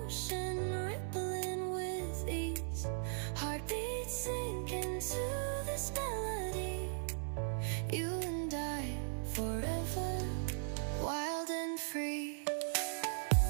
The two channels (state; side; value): silent; left; digital silence